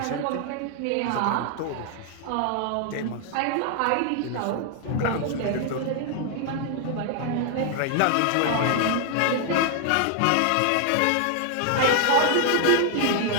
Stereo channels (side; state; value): both; different; correlation 0.00